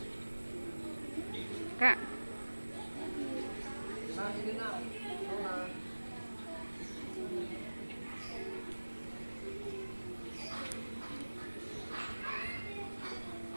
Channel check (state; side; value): inverted; both; correlation -1.00